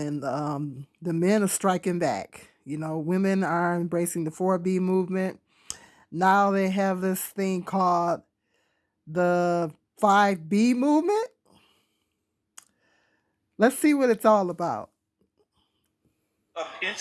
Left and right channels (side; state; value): both; identical; correlation 1.00